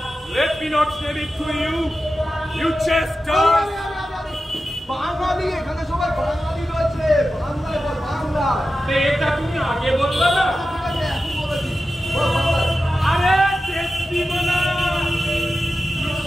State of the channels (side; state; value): both; normal; correlation 0.92